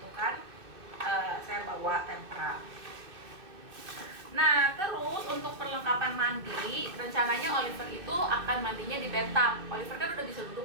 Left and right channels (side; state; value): left; late; 2.6 ms